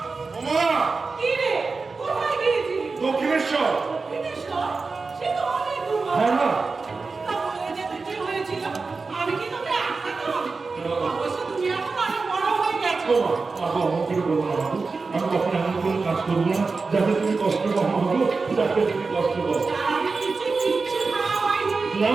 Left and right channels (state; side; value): quieter; left; 4.2 dB